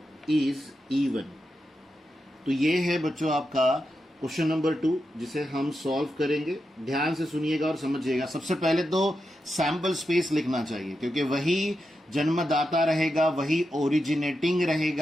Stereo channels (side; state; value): both; normal; correlation 0.88